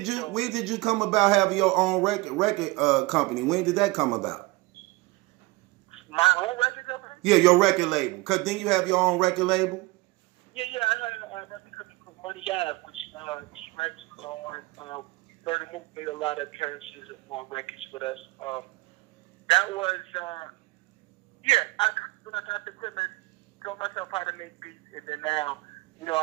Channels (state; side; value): quieter; left; 22.3 dB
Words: you come about having your own record company? When did that come about? My own record company? Yeah, your record label. Cause then you have your own record label. Yeah. I had a record company called Money Ave, which T-Rex was on. Murder Mook made a lot of appearances on records with us. That was when I got the equipment, taught myself how to make beats, and then now,